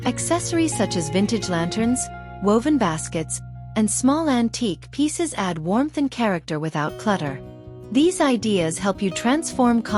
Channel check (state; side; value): identical; both; correlation 1.00